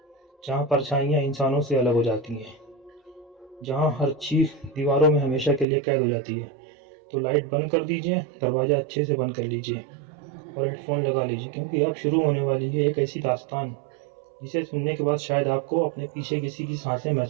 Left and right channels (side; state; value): left; drops out; at 5.7 s